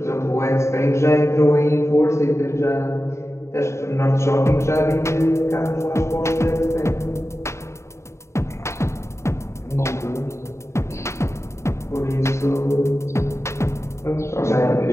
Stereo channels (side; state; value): right; late; 0.14 ms